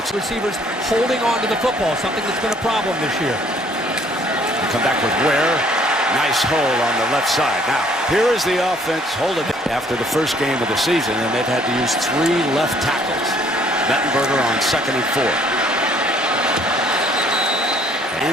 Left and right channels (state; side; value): normal; both; correlation 0.61